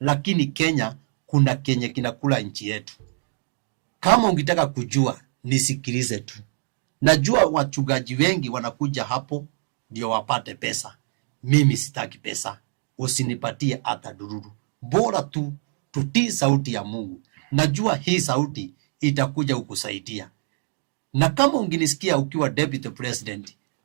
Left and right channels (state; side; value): silent; left; digital silence